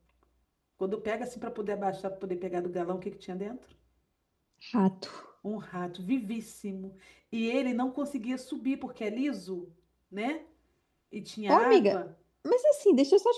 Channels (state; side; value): identical; both; correlation 1.00